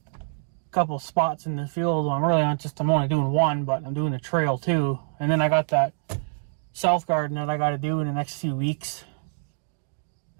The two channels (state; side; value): silent; left; digital silence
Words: a couple of spots in the field. I'm only doing one, but I'm doing the trail too. And then I got that south garden that I got to do in the next few weeks.